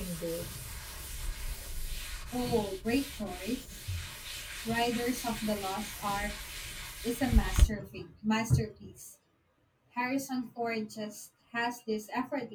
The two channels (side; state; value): both; identical; correlation 1.00